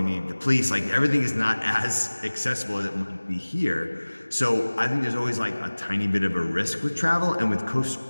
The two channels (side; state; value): both; inverted; correlation -1.00